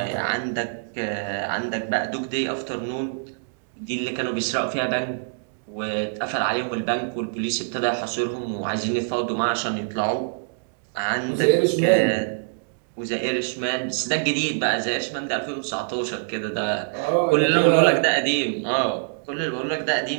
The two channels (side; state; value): left; silent; digital silence